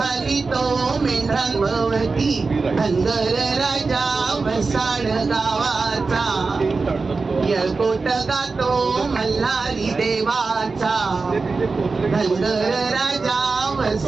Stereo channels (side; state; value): left; quieter; 4.2 dB